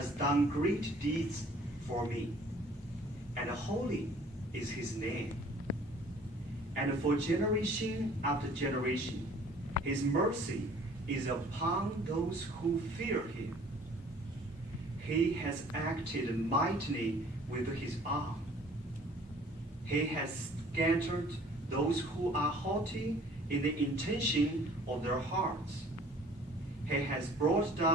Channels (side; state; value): both; normal; correlation 0.53